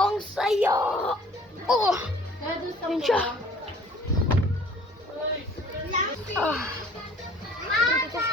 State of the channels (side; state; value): both; normal; correlation 0.53